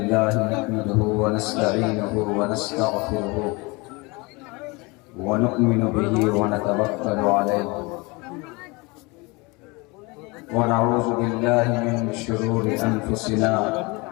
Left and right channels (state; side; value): quieter; right; 26.2 dB